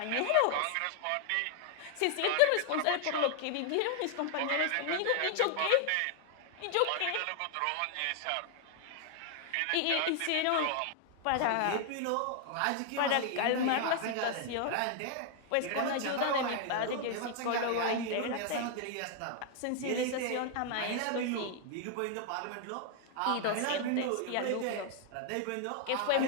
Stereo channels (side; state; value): both; different; correlation 0.00